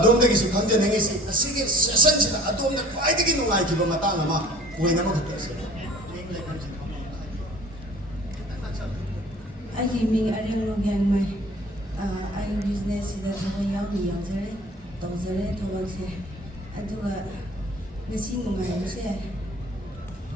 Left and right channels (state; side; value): normal; both; correlation 0.48